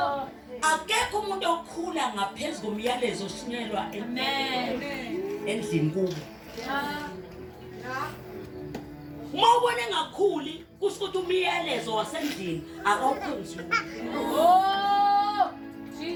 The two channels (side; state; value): both; identical; correlation 1.00